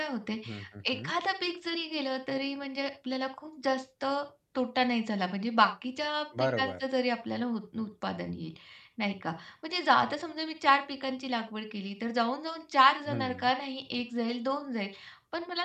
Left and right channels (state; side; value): identical; both; correlation 1.00